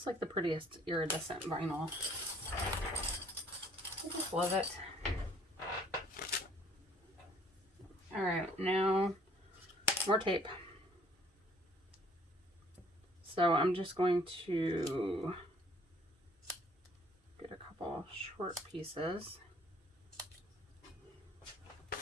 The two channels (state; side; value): normal; both; correlation 0.59